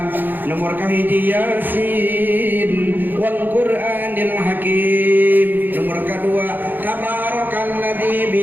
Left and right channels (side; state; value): left; late; 0.090 ms